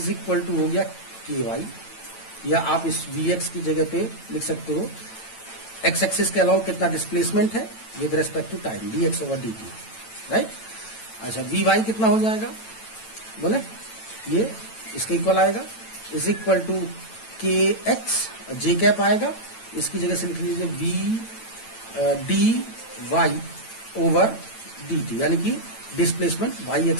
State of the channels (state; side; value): late; right; 9.0 ms